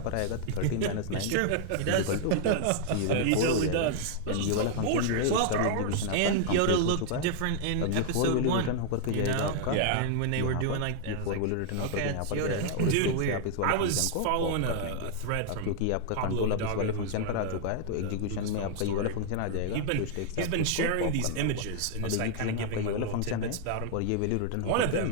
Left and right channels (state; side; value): different; both; correlation -0.01